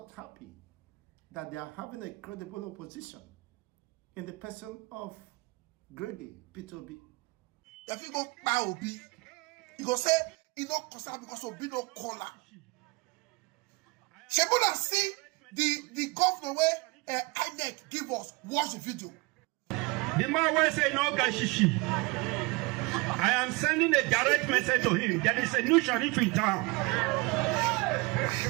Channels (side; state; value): left; quieter; 26.5 dB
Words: happy that they are having a credible opposition in the person of Gregi Peter Obi. If you go buy Obi, you go say he no concern because Obi no caller. Shebuna see the governor where INEC give us watch the video. The man will say no gashishi. I am sending a direct message to him. There is a new sheriff in town.